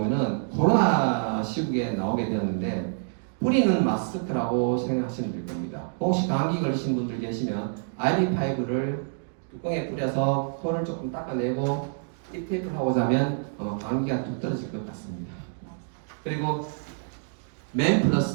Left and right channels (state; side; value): silent; left; digital silence